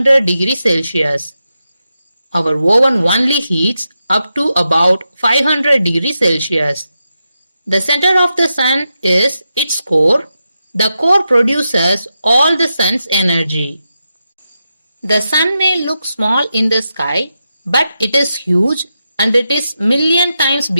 degrees Celsius. Our oven only heats up to about 500 degrees Celsius. The center of the Sun is its core. The core produces all the Sun's energy. The Sun may look small in the sky, but it is huge and it is million times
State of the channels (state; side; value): inverted; both; correlation -0.88